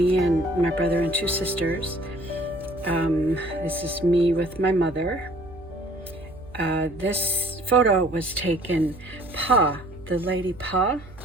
and my brother and two sisters. This is me with my mother. This photo was taken, Pa, the lady Pa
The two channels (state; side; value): noise; right; hum, 19 dB below the sound